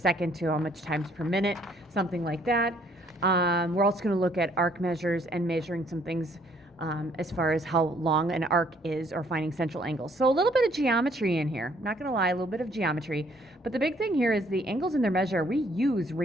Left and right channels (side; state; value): both; normal; correlation 0.64